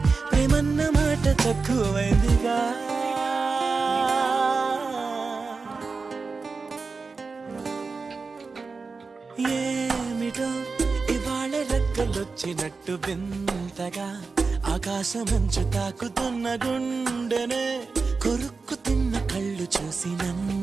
ప్రేమన్న మాట తక్కువైందిగా. ఏమిటో ఇవాళ రెక్కలొచ్చినట్టు వింతగా ఆకాశమంచు తాకుతున్న గుండెనే, కొరుక్కు తిన్న కళ్ళు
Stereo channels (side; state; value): left; quieter; 4.4 dB